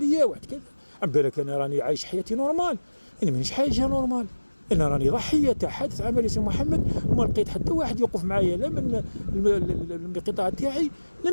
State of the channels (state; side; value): inverted; both; correlation -1.00